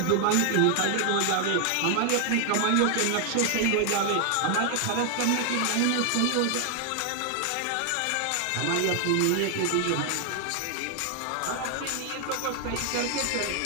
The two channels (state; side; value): different; both; correlation 0.00